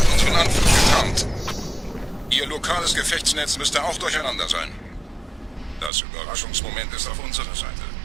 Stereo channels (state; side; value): drops out; left; at 5.9 s